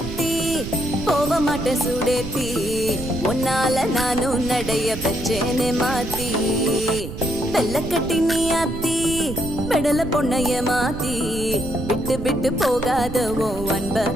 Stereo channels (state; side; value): noise; right; rumble, 8 dB below the sound